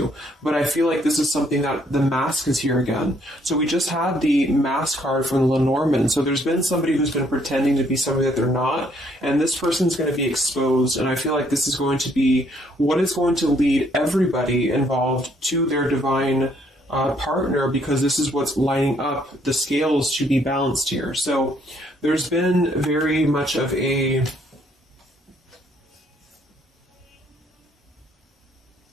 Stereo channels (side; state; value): both; normal; correlation 0.68